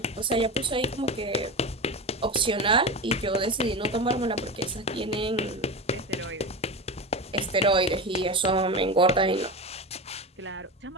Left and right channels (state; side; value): normal; both; correlation 0.23